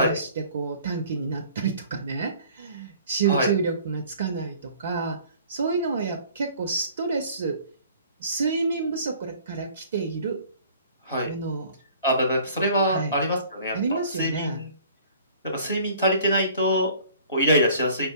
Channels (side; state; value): both; inverted; correlation -0.52